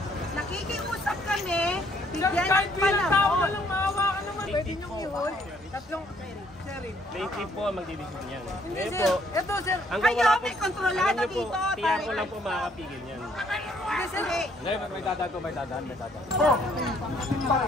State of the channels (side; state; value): both; normal; correlation 0.66